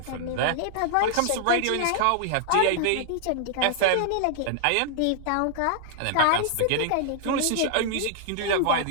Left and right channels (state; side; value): different; both; correlation -0.01